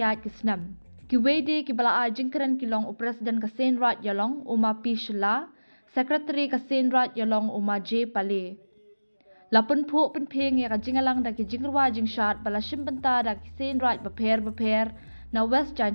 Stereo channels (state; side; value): inverted; both; correlation -1.00